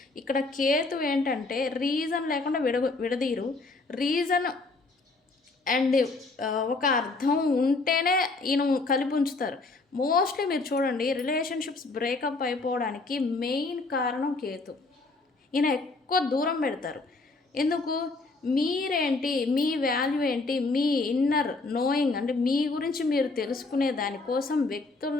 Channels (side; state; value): right; quieter; 3.5 dB